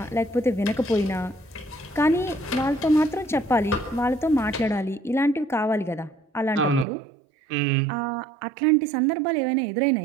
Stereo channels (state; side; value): drops out; left; at 6.9 s